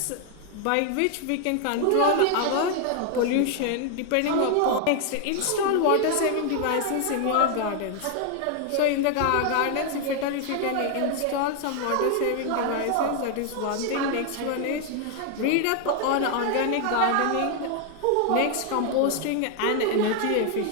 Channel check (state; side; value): different; both; correlation 0.00